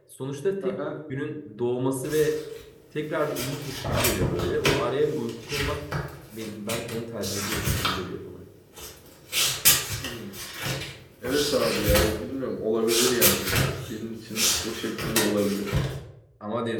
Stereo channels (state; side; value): identical; both; correlation 1.00